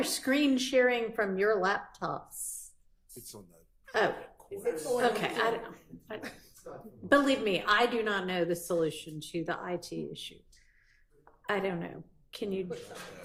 screen sharing from your laptops. It's on the. Oh, okay, I don't know. Believe me, I do not know the solution to the IT issue. I don't know. Can you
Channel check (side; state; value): both; identical; correlation 1.00